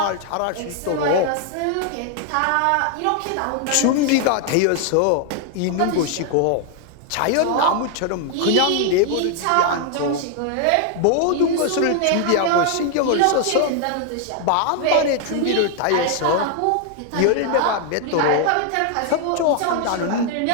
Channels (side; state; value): both; different; correlation 0.00